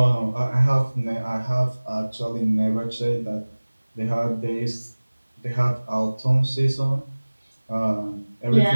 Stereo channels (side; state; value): both; inverted; correlation -1.00